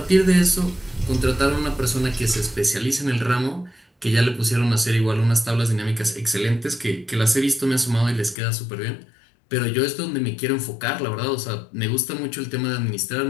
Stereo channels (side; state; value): right; drops out; at 8.3 s